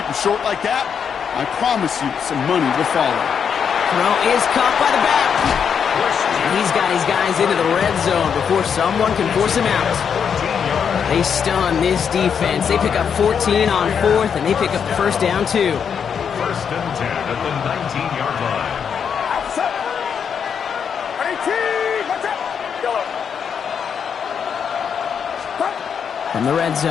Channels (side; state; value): right; quieter; 7.2 dB